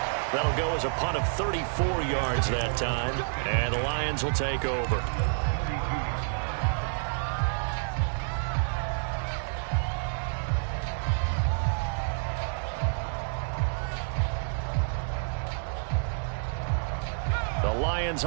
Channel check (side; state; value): left; silent; digital silence